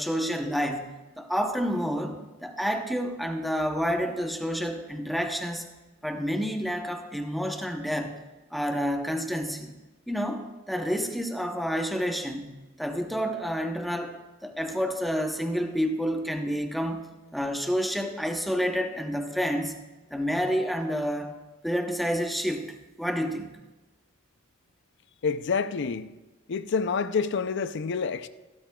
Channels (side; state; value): both; normal; correlation 0.71